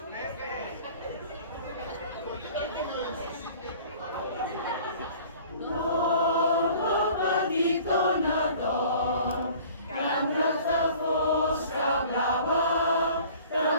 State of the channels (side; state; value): both; inverted; correlation -0.49